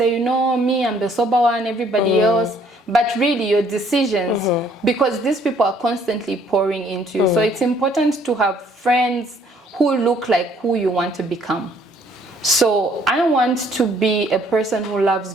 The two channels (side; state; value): both; normal; correlation 0.63